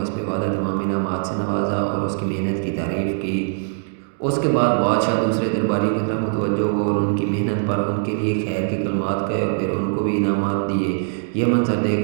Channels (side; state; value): left; silent; digital silence